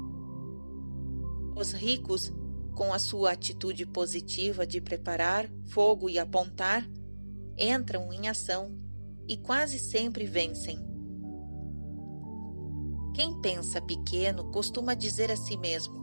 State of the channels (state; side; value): inverted; both; correlation -1.00